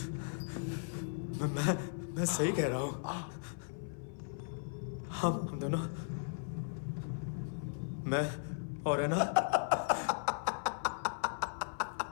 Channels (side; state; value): right; silent; 53 dB below the other